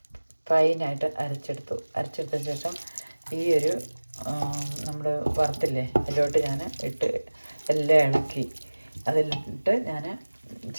ഫൈനായിട്ട് അരച്ചെടുത്തതിന് ശേഷം ഈ ഒരു നമ്മൾ വറുത്തില്ലേ അതിലോട്ട് ഞാൻ ഇട്ട് എല്ലാം ഇളക്കി. അതിലിട്ട് ഞാൻ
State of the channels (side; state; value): both; inverted; correlation -1.00